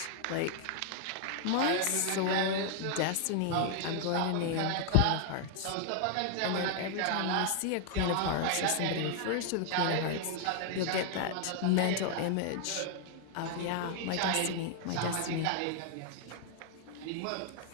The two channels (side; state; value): both; different; correlation 0.00